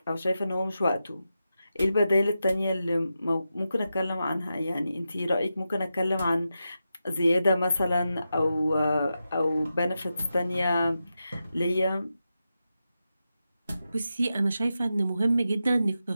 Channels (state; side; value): inverted; both; correlation -0.89